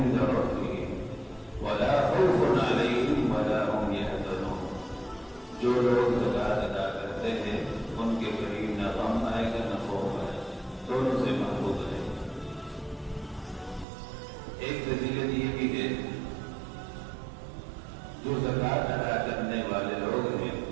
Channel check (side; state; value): left; drops out; at 13.9 s